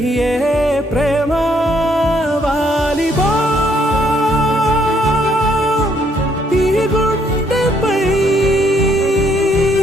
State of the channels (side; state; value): both; normal; correlation 0.69